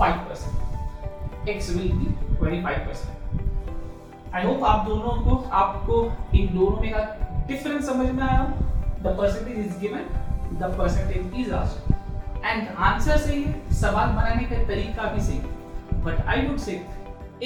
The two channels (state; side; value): identical; both; correlation 1.00